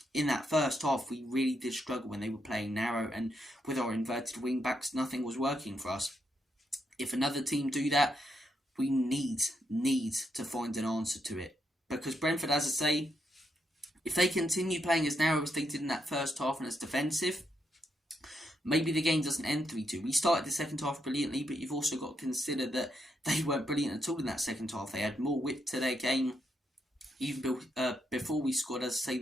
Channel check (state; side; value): normal; both; correlation 0.80